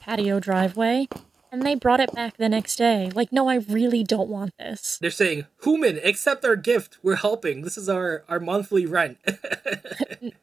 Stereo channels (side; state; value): left; quieter; 4.6 dB